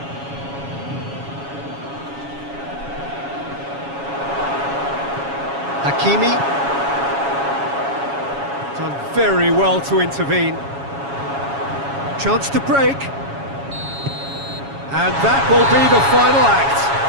Hakimi. Done very well to intervene. Chance to break. And that will be the final act.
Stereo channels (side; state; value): left; late; 7.2 ms